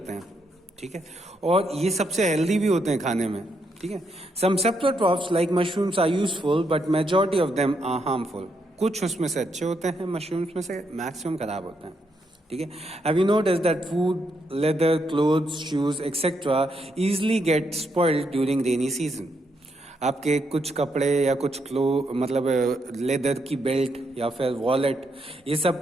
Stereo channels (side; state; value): both; normal; correlation 0.78